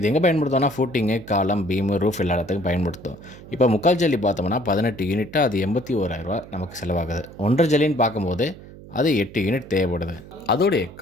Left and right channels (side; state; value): right; noise; hum, 18 dB below the sound